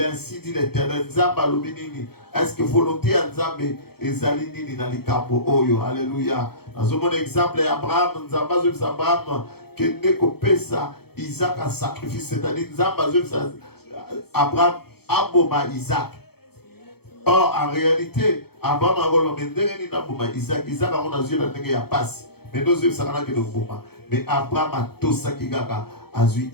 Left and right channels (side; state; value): right; late; 0.96 ms